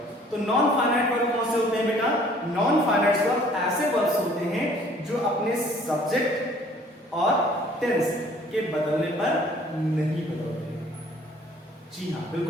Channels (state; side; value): normal; both; correlation 0.56